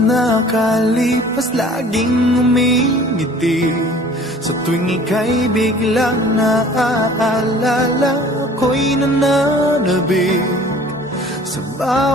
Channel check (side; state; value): both; normal; correlation 0.49